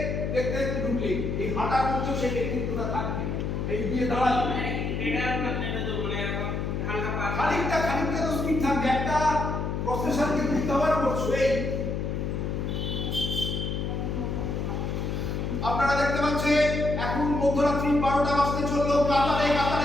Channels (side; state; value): left; noise; hum, 2 dB below the sound